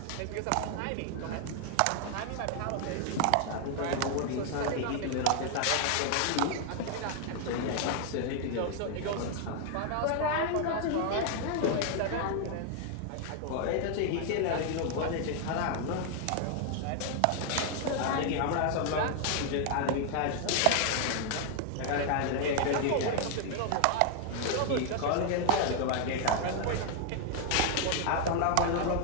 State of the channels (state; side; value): different; both; correlation 0.00